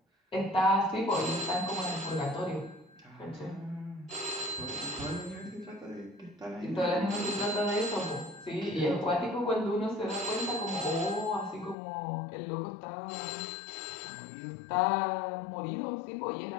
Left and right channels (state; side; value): drops out; right; at 11.8 s